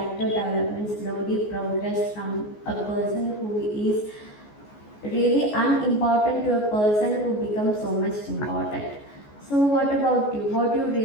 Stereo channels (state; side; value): late; right; 14 ms